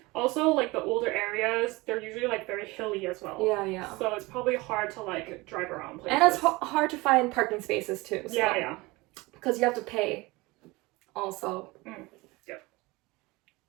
Also, like, the older areas, they're usually, like, very hilly as well. Yeah. So it's probably hard to, like, drive around places. And it's hard to find parking spaces, too. So. Yeah. Because you have to pay also.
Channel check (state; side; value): quieter; left; 22.7 dB